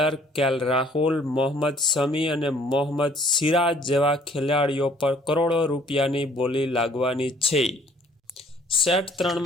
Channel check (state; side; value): normal; both; correlation 0.59